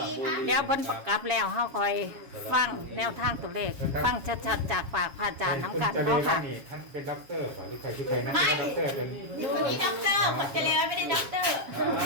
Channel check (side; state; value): left; late; 7.3 ms